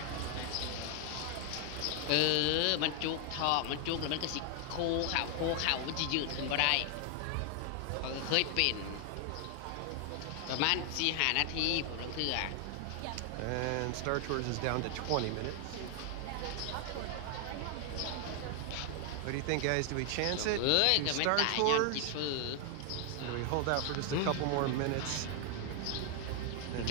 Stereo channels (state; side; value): different; both; correlation 0.00